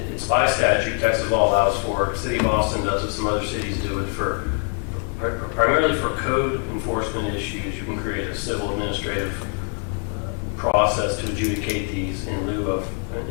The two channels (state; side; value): quieter; right; 39.1 dB